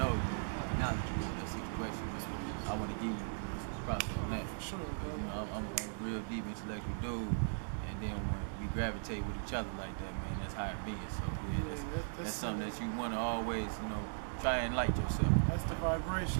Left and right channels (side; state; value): left; silent; digital silence